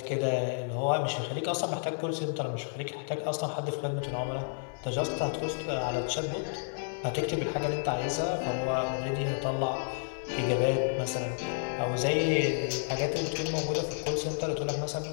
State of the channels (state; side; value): silent; right; 57 dB below the other